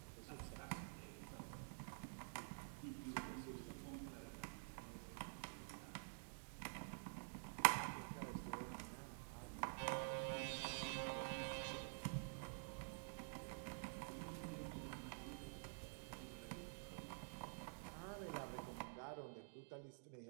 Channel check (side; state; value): left; silent; digital silence